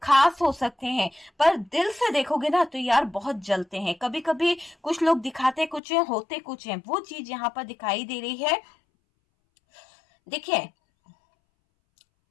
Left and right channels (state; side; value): drops out; right; at 5.8 s